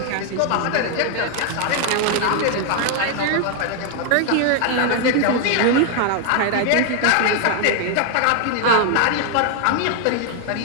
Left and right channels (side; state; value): both; different; correlation 0.00